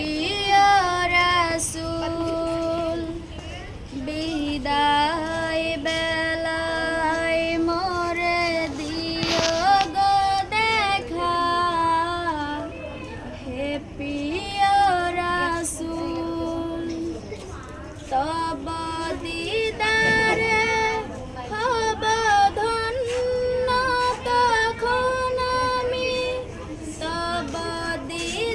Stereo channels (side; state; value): both; identical; correlation 1.00